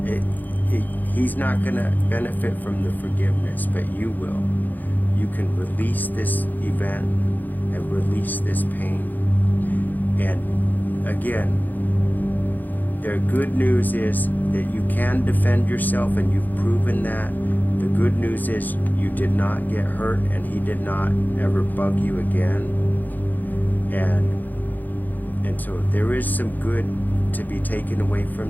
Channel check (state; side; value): late; right; 0.085 ms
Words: He's not going to benefit from the forgiveness, but you will. You can release this event and release this pain. And again, the good news is that you can defend yourself, and you've proven that. The good news is you did not get hurt, and he did not ever bug you again. And so there is some good to be taken away